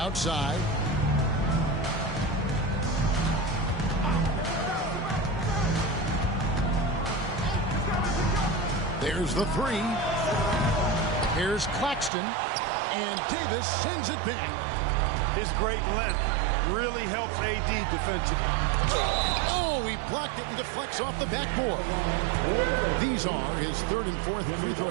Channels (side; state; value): left; drops out; at 12.1 s